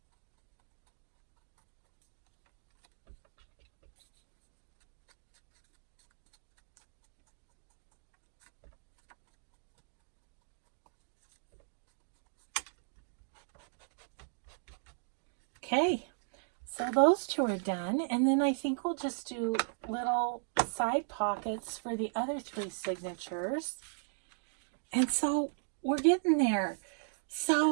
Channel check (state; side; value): silent; left; digital silence